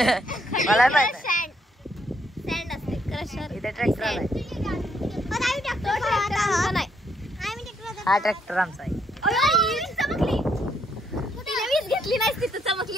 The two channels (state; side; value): normal; both; correlation 0.73